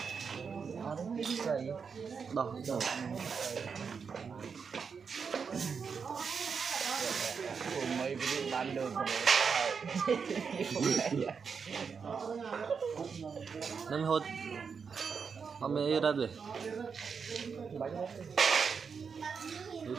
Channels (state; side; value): quieter; left; 5.9 dB